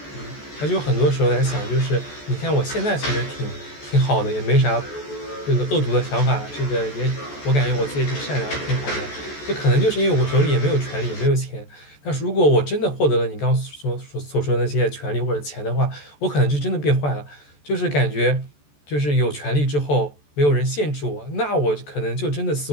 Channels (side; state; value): right; late; 14 ms